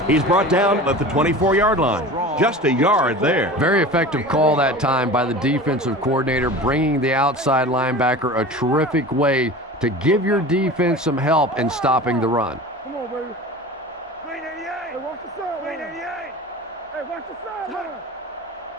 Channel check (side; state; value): both; normal; correlation 0.35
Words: He's brought down at the 24-yard line. Just a yard there. Very effective call that time by the defensive coordinator, bringing the outside linebacker a terrific way to give your defense some help in stopping the run. Come on, baby. 388. Hey, watch the side. 388. Hey, watch the side. He